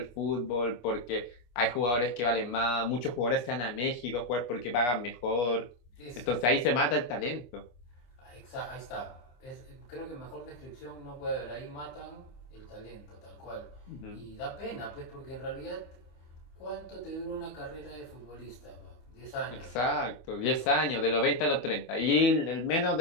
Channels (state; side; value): late; right; 25 ms